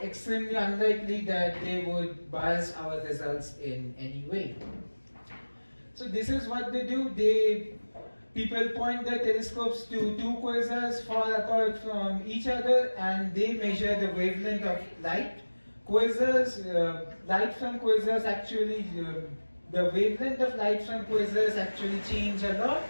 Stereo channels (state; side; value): inverted; both; correlation -1.00